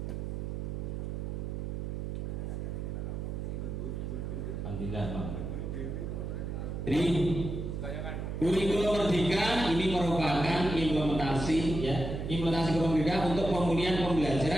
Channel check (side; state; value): right; noise; hum, 4 dB below the sound